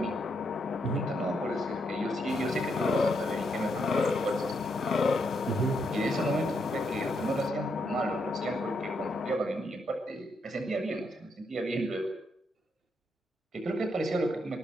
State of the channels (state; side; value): normal; both; correlation 0.78